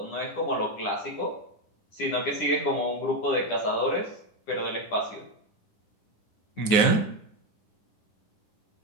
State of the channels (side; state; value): right; late; 9.6 ms